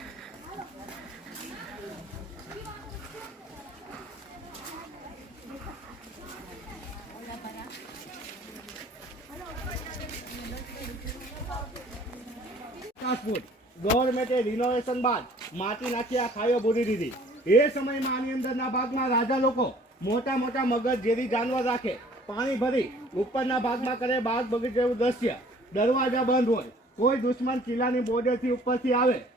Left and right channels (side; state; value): both; normal; correlation 0.54